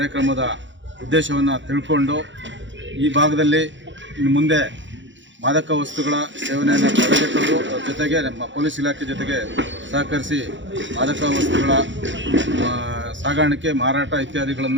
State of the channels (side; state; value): left; late; 0.54 ms